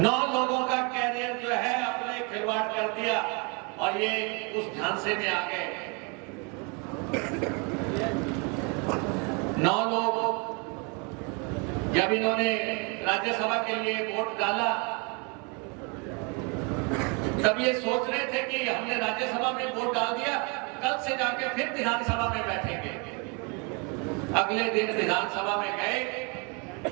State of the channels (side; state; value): left; quieter; 32.7 dB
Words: लोगों का कैरियर जो है अपने खिलवाड़ कर दिया और ये उस झांसे में आ गए। 9 लोग जब इन्होंने राज्यसभा के लिए वोट डाला तब ये सोच रहे थे कि हमने राज्यसभा में वोट डाल दिया, कल से जाके फिर विधानसभा में बैठेंगे। अगले दिन विधानसभा में गए,